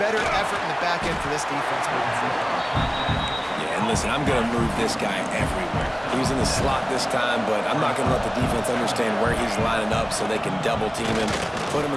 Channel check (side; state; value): both; identical; correlation 1.00